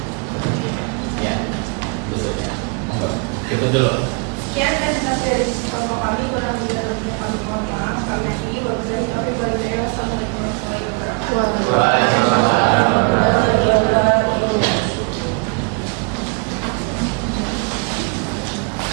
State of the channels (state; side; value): quieter; left; 34.6 dB